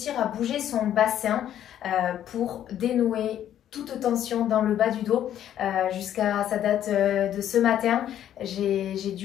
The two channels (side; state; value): right; quieter; 10.9 dB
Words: à bouger son bassin pour dénouer toute tension dans le bas du dos. Jusqu'à sa date de ce matin, j'ai